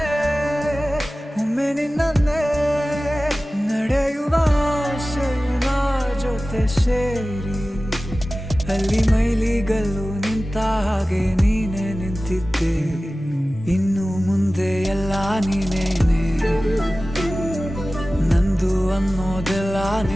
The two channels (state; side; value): normal; both; correlation 0.96